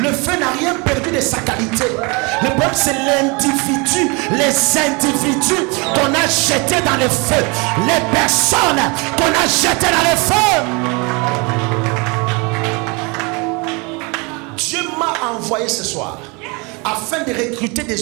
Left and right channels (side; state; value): left; quieter; 29.4 dB